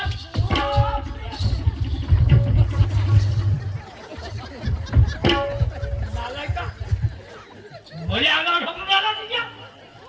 भले अंगावर ढकलून आला तुझ्या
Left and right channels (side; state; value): both; identical; correlation 1.00